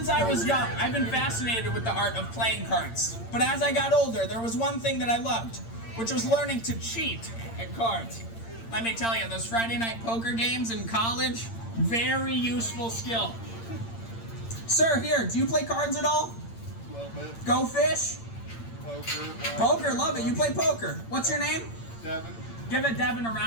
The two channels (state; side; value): late; right; 8.8 ms